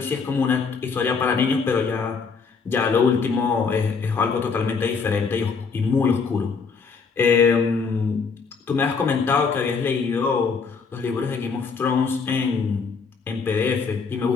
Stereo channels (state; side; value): quieter; right; 5.2 dB